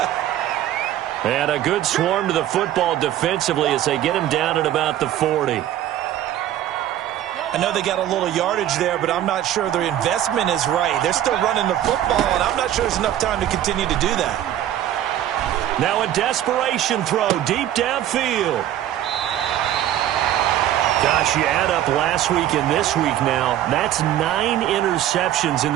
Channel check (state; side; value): quieter; left; 12.1 dB